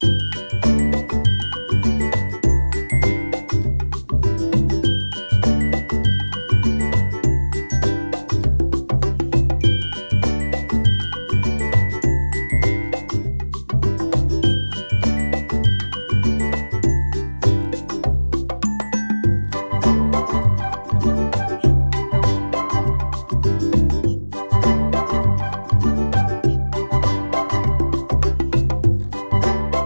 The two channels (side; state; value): both; inverted; correlation -1.00